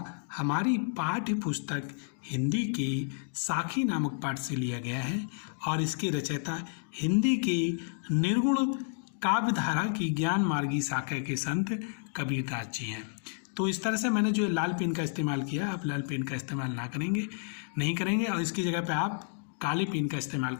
हमारी पाठ्य पुस्तक हिंदी के साखी नामक पाठ से लिया गया है और इसके रचयिता हिंदी के निर्गुण काव्यधारा की ज्ञान मार्गी शाखा के संत कबीरदास जी हैं। तो इस तरह से मैंने जो लाल पेन का इस्तेमाल किया, आप लाल पेन का इस्तेमाल नहीं करेंगे और इसकी जगह पे आप काले पेन का इस्तेमाल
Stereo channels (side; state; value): right; silent; digital silence